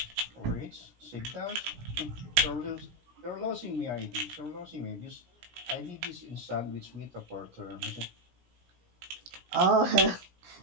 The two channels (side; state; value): left; late; 17 ms